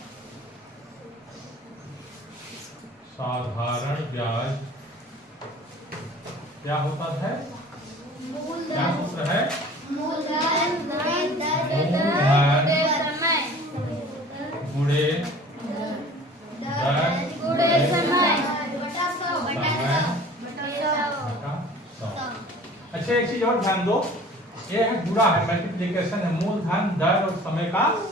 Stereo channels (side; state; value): both; normal; correlation 0.46